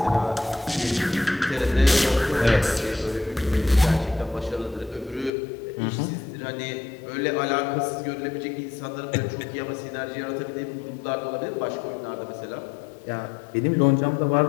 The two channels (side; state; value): right; drops out; at 5.3 s